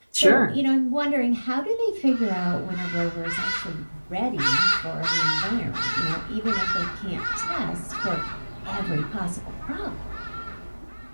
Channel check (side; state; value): both; inverted; correlation -1.00